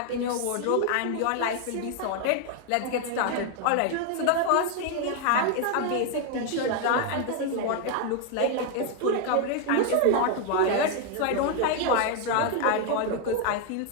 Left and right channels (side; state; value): both; different; correlation 0.01